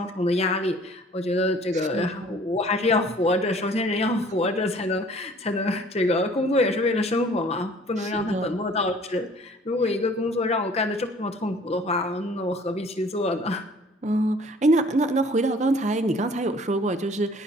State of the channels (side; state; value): both; normal; correlation 0.53